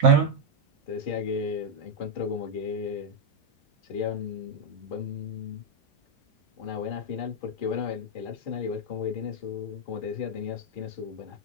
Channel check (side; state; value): both; normal; correlation -0.01